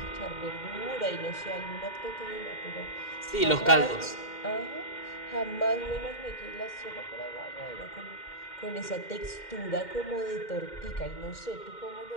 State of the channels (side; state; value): right; late; 2.1 ms